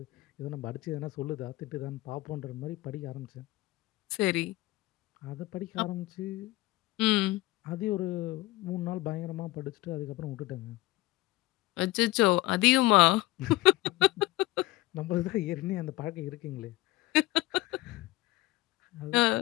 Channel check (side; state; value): right; quieter; 18.8 dB